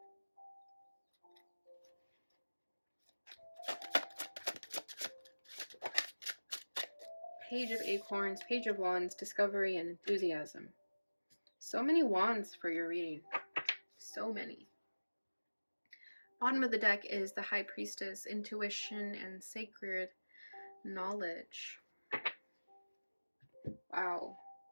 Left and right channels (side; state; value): both; inverted; correlation -1.00